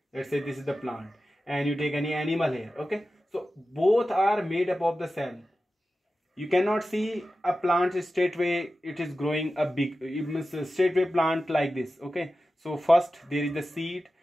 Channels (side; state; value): both; normal; correlation 0.94